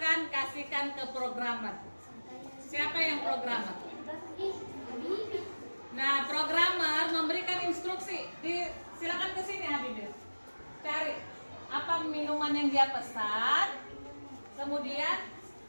kasihkan ke programmer. Siapa yang programmer? Nah, programmer memberikan instruksi. Silakan ke sini Habibir. Cari apa minuman yang dia pesan. Kemudian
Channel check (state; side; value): inverted; both; correlation -1.00